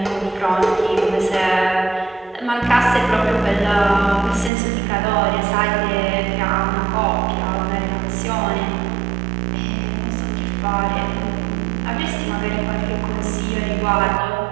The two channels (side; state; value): left; drops out; at 4.5 s